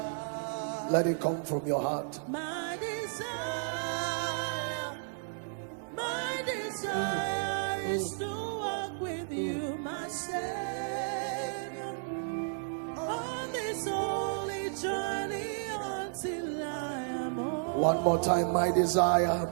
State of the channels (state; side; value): silent; left; digital silence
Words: Let it come from your heart. My desire is to walk with you, my Savior, on this holy journey until I am home. One more time, my desire,